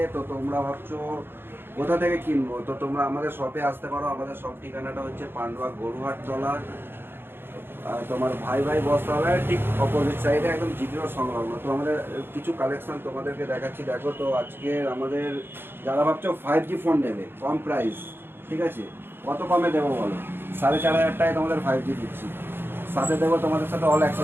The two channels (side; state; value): left; late; 0.10 ms